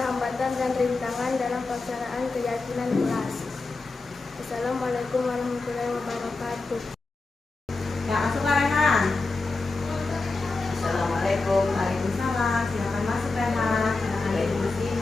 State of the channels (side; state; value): right; quieter; 3.6 dB